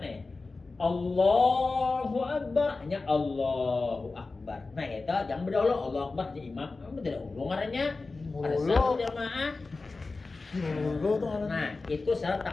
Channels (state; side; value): quieter; right; 3.7 dB